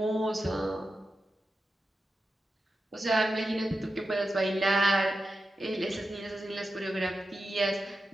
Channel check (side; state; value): both; normal; correlation 0.90